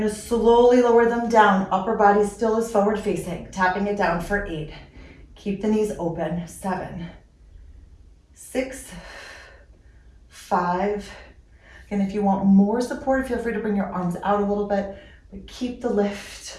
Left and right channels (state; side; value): identical; both; correlation 1.00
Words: to slowly lower them down. Upper body still is forward facing. Tapping it down for 8. Keep the knees open. 7, 6, 5. And if you want more support, feel free to bring your arms out a little bit, but keep the lift.